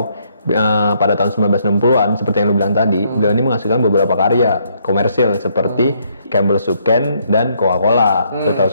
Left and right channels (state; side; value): inverted; both; correlation -0.70